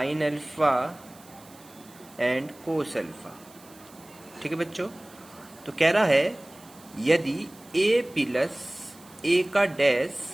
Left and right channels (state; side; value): noise; right; hiss, 24 dB below the sound